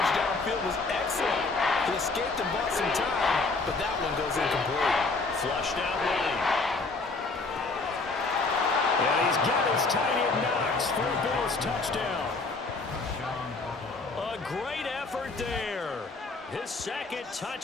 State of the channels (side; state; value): right; quieter; 3.7 dB